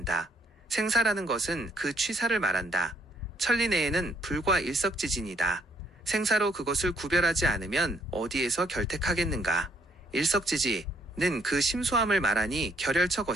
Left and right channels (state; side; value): normal; both; correlation 0.68